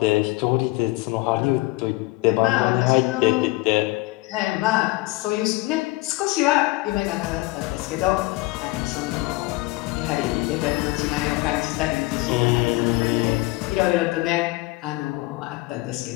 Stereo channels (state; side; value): quieter; right; 21.7 dB